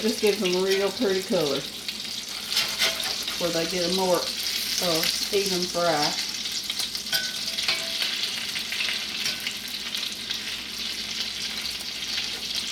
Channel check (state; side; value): identical; both; correlation 1.00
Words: gives them a real pretty color, where they get a more even fry.